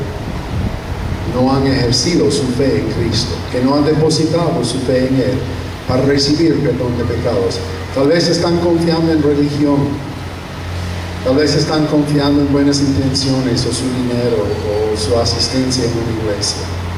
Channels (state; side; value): identical; both; correlation 1.00